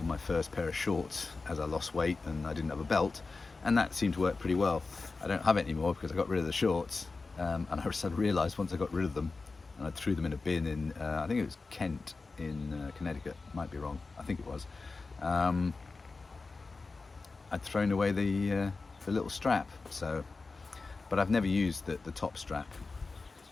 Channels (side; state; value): right; quieter; 3.9 dB